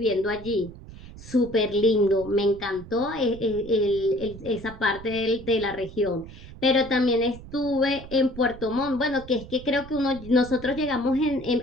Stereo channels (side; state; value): right; noise; rumble, 16 dB below the sound